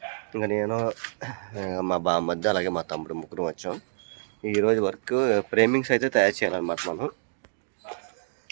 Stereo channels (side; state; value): left; silent; digital silence